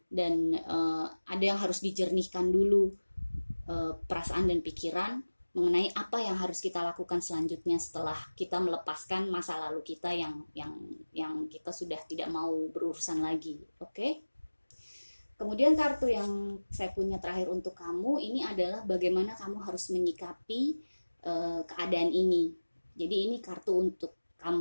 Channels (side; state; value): both; inverted; correlation -1.00